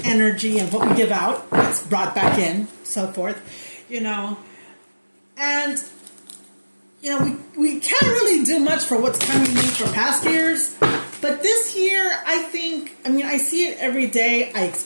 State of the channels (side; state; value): both; inverted; correlation -1.00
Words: energy and what we give out. It's brought back in, so forth, And, we can't really do much for what's coming in for past years. But this year, I see it every day. I